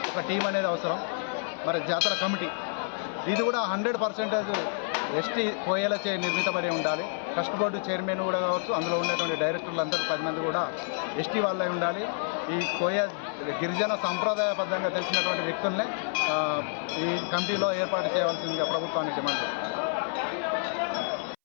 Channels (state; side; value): silent; right; 59 dB below the other